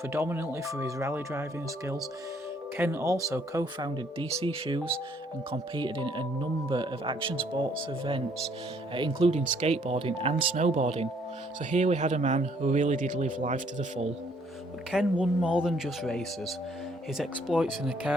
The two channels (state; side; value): normal; both; correlation 0.65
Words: for his rally driving skills, Ken also co-founded DC Shoes and competed in a number of action sports events, including skateboarding and snowboarding. So here we had a man who really did live life to the full. But Ken won more than just races. His exploits in a